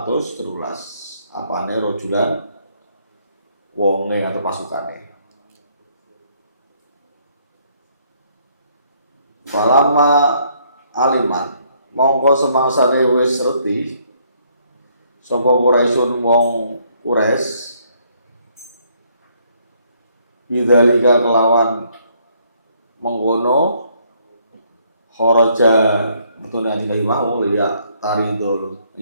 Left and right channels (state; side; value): inverted; both; correlation -0.68